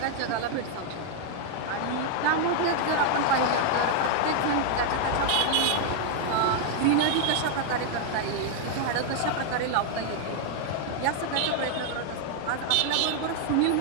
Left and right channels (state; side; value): different; both; correlation 0.00